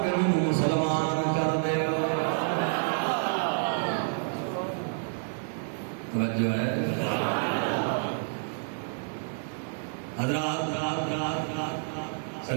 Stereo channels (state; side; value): silent; left; digital silence